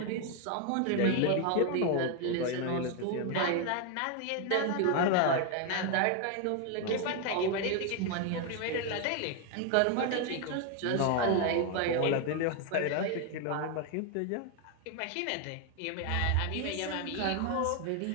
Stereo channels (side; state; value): both; different; correlation 0.01